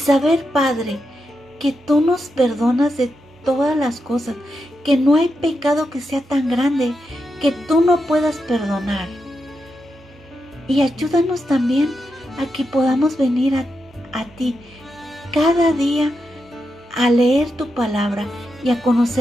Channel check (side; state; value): both; normal; correlation 0.86